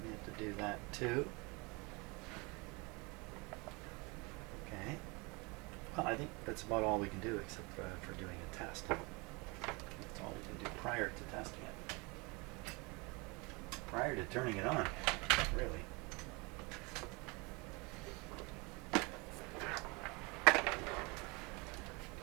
we have to do that too. Okay. Well, I think that's about all we can do except for doing a test. That's all we can do prior to testing it. Prior to turning it on, really.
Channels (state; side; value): quieter; left; 27.8 dB